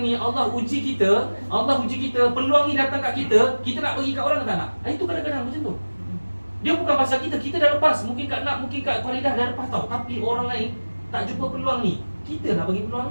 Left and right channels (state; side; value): inverted; both; correlation -1.00